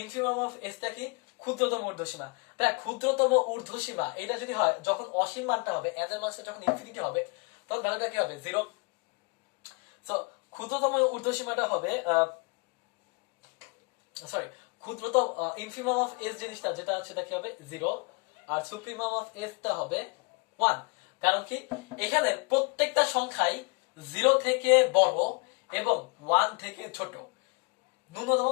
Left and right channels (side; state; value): right; quieter; 31.7 dB